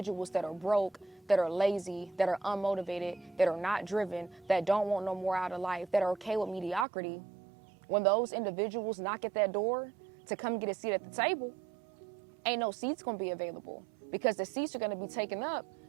that are broke, that are lazy, that are unmotivated, that are not driven, that don't want no more out of life, that are okay with mediocrity, when those individuals knock at that door to come get a seat at the table, ain't no seats gonna be available, because the seats are gonna be taken up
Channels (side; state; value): left; drops out; at 6.9 s